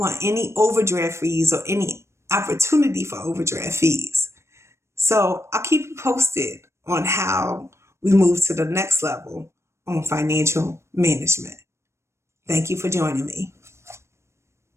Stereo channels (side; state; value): left; late; 0.13 ms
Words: any overdraft fees or any opportunity for overdraft fees. So I'll keep you posted on how we move to the next level on financial management. Thank you for joining me.